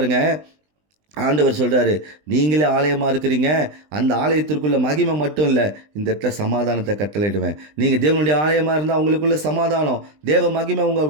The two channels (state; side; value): late; left; 20 ms